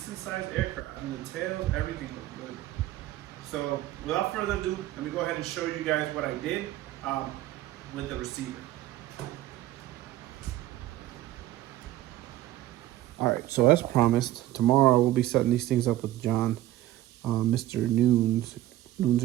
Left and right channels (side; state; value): left; quieter; 14.9 dB